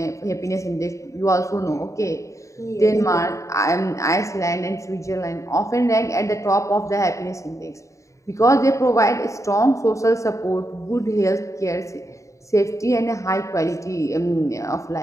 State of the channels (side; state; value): right; late; 0.15 ms